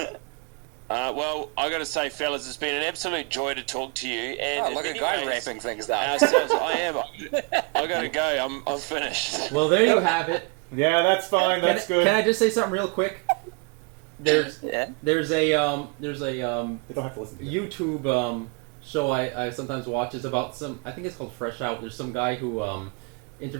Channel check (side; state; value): left; quieter; 32.0 dB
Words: Well, I got to say, fellas, it's been an absolute joy to talk to you. And Oh, in look at many guy ways, wrapping things up. ourselves, I am. I got to go. I'm finished. Well, there you have it. Yeah, that's fine. That's good. Can I just say something real quick? There's Yeah. there's a They don't have to listen to you. YouTube show I sometimes watch is about some, I think it's called Fresh Out. There's some guy who